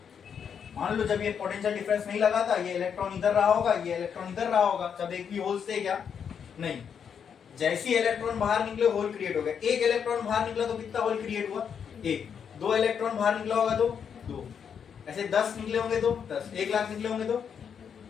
मान लो जब ये पोटेंशियल डिफरेंस नहीं लगा था, ये इलेक्ट्रॉन इधर रहा होगा, ये इलेक्ट्रॉन इधर रहा होगा, जब एक भी होल्स थे क्या? नहीं। जैसे ही इलेक्ट्रॉन बाहर निकले होल क्रिएट हो गया। एक इलेक्ट्रॉन बाहर निकला तो कितना होल क्रिएट हुआ? एक। दो इलेक्ट्रॉन बाहर निकला होगा तो दो। ऐसे 10 निकले होंगे तो 10, 1 लाख निकले होंगे तो,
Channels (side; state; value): right; quieter; 7.4 dB